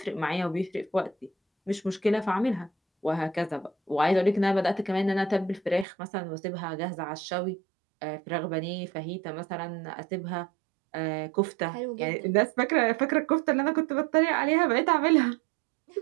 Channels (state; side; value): drops out; left; at 5.9 s